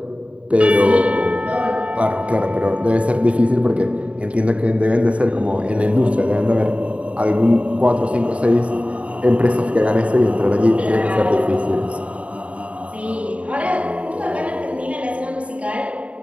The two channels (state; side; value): late; left; 0.064 ms